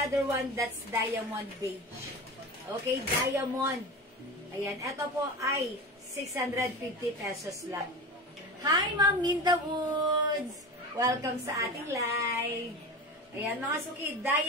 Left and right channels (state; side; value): normal; both; correlation 0.29